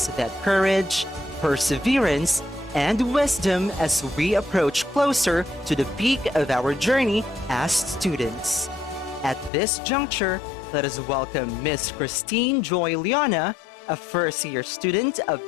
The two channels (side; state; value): right; drops out; at 9.5 s